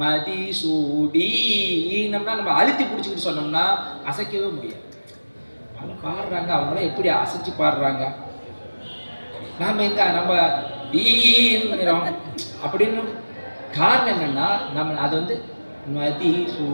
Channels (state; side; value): inverted; both; correlation -1.00